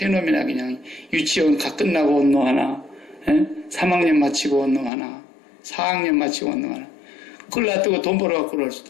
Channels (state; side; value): drops out; right; at 4.9 s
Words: 놈이나 그냥 유치원 가 끝나고 온 놈 하나, 3학년 마치고 온 놈 하나, 4학년 마치고 온 놈 하나, 그걸 놔두고 돈 벌어갖고 그럴